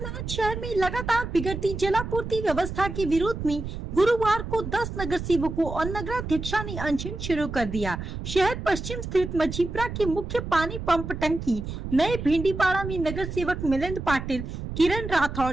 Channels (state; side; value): noise; right; rumble, 7 dB below the sound